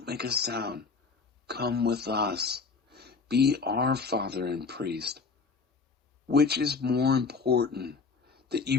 make a sound. Come with us. Be our father and priest. Which is more important, that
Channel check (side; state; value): right; quieter; 4.8 dB